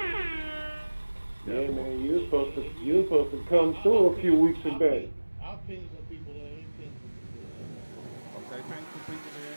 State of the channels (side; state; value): both; inverted; correlation -1.00